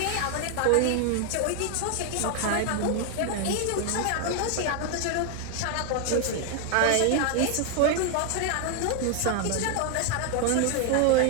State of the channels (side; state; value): both; different; correlation 0.00